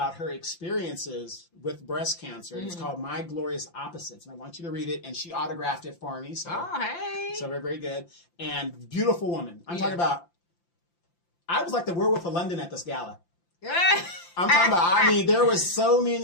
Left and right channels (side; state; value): right; late; 5.8 ms